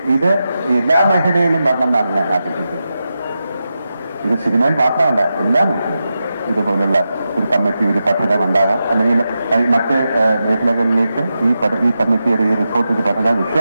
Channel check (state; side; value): inverted; both; correlation -0.90